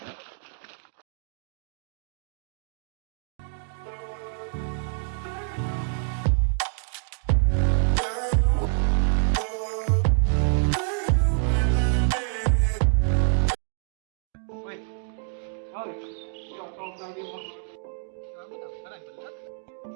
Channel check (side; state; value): left; silent; 60 dB below the other